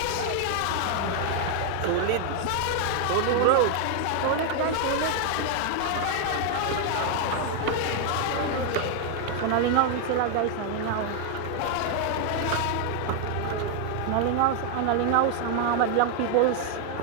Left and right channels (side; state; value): both; different; correlation 0.00